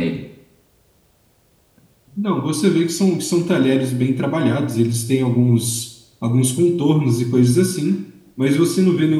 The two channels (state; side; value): identical; both; correlation 1.00